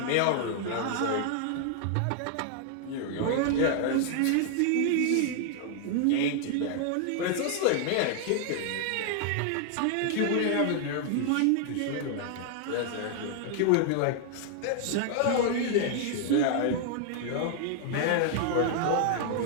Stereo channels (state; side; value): different; both; correlation 0.00